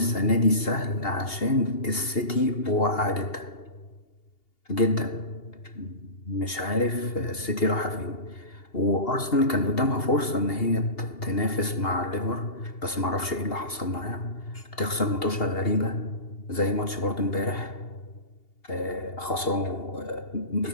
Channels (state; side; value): late; right; 2.8 ms